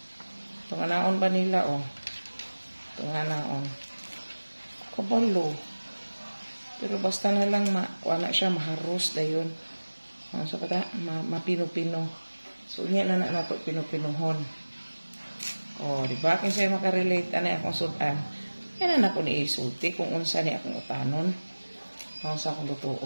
Itong naon ba nila Itong naon. Kabalo. Pero basta na lang na siya maharos dayon. So kata mapino-pino. So unya na nato pino-pinuhon. Di ba kin siya makarelate ani akong sudan. Yan na ako ni isulti kung unsa ni akong utanon. Unsa akong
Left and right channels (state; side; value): inverted; both; correlation -1.00